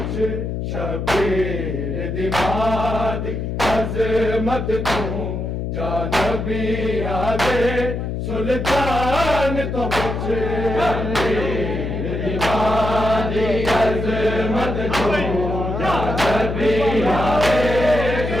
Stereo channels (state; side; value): noise; left; hum, 3 dB below the sound